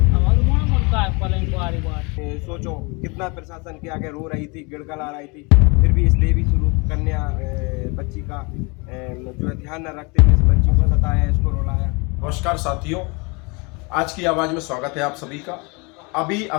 सोचो कितना प्रशासन के आगे रो रही थी, गिड़गड़ा रही थी, फिर भी इस देवी स्वरूप कन्या बच्ची का जो है ध्यान न रखते हुए इस बच्ची को सताया, इसको रुलाया। नमस्कार साथियों, आज की आवाज़ में स्वागत है आप सभी का। अभी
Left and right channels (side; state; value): right; quieter; 29.6 dB